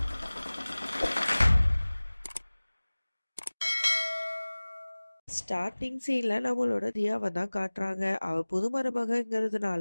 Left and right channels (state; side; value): inverted; both; correlation -1.00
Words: ஸ்டார்டிங் சீன்ல நம்மளோட தியாவை தான் காட்டுறாங்க. அவ புது